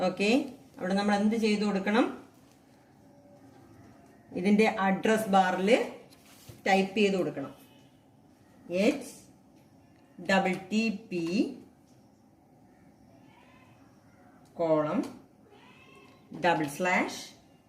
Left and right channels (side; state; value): both; identical; correlation 1.00